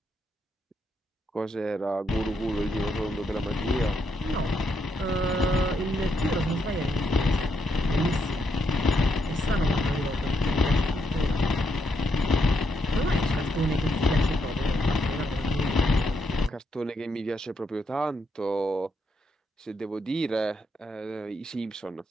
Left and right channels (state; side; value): normal; both; correlation 0.79